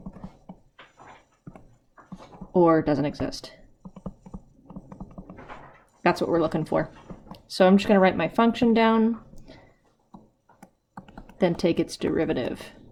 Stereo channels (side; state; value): both; identical; correlation 1.00